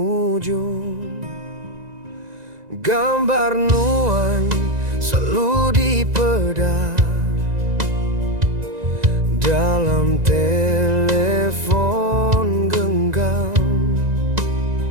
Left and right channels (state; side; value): late; left; 1.9 ms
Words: Gambar nuan selalu dipedar dalam telepon genggam,